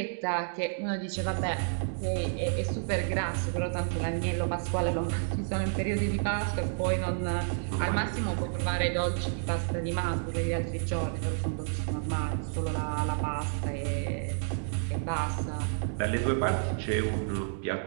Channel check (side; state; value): left; silent; digital silence